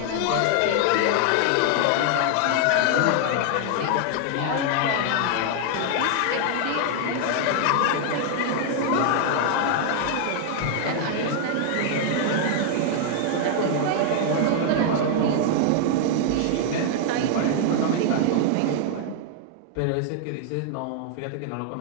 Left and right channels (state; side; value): different; both; correlation 0.00